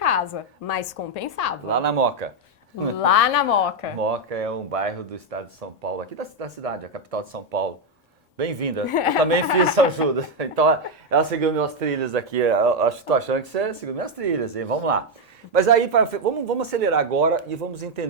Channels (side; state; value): both; normal; correlation 0.04